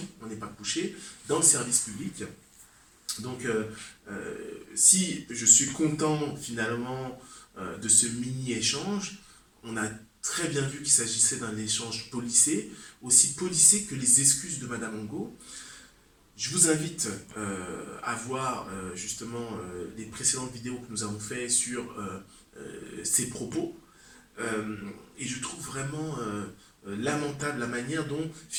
on n'est pas couché, dans le service public. Donc, si je suis content finalement de ce mini-échange, on a très bien vu qu'il s'agissait d'un échange policé, aussi policé que les excuses de Madame Angot. Je vous invite à voir justement les précédentes vidéos que nous avons faites sur ses propos. Et je trouve vraiment lamentable la manière dont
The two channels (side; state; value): both; identical; correlation 1.00